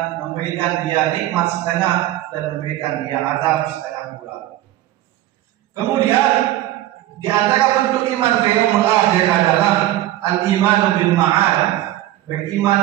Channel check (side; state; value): left; quieter; 14.6 dB